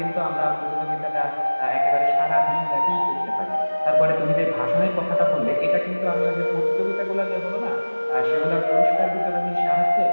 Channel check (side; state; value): both; inverted; correlation -1.00